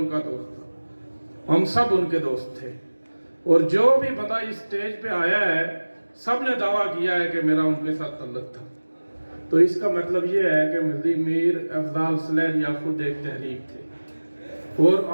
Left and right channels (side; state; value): both; inverted; correlation -1.00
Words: کا دوست تھا، ہم سب ان کے دوست تھے، اور جو بھی بندہ اس سٹیج پہ آیا ہے سب نے دعویٰ کیا ہے کہ میرا ان کے ساتھ تعلق تھا۔ تو اس کا مطلب یہ ہے کہ میر افضال سلیریہ خود ایک تحریک تھے، اور